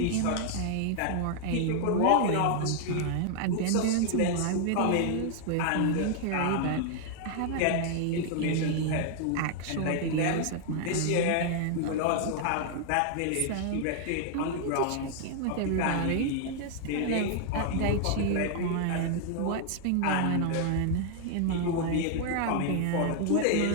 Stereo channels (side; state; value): both; different; correlation 0.00